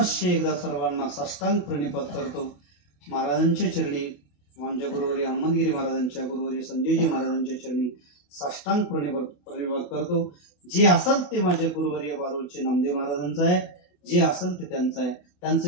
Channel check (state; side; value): late; right; 28 ms